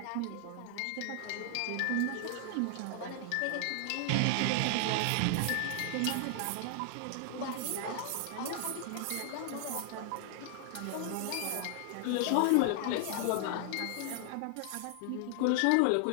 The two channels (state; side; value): different; both; correlation 0.00